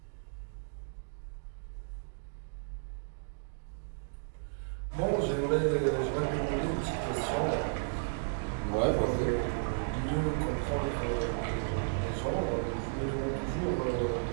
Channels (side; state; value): left; silent; digital silence